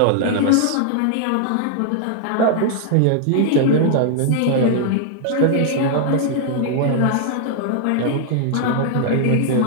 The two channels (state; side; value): different; both; correlation 0.00